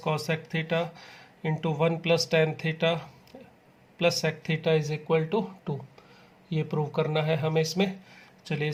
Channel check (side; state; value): both; identical; correlation 1.00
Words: theta into 1 plus tan theta plus sec theta is equal to 2। ये प्रूव करना है हमें इसमें। चलिए